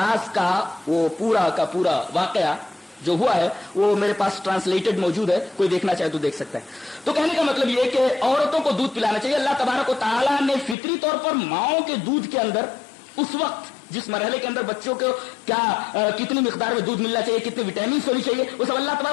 کا وہ پورا کا پورا واقعہ جو ہوا ہے وہ میرے پاس ٹرانسلیٹڈ موجود ہے، کوئی دیکھنا چاہے تو دیکھ سکتا ہے. تو کہنے کا مطلب یہ کہ عورتوں کو دودھ پلانا چاہیے. اللہ تبارک و تعالیٰ نے فطری طور پر ماؤں کے دودھ کے اندر اس وقت جس مرحلے کے اندر بچوں کو کیا کتنی مقدار میں دودھ ملنا چاہیے، کتنے وٹامنس ہونی چاہیے، وہ سب اللہ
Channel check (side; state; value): right; drops out; at 10.8 s